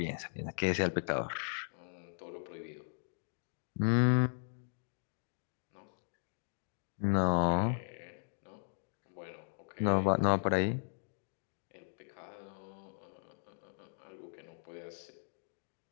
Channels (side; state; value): right; silent; digital silence